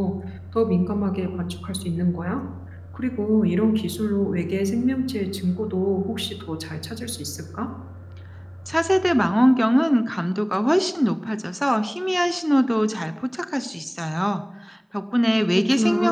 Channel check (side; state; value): both; identical; correlation 1.00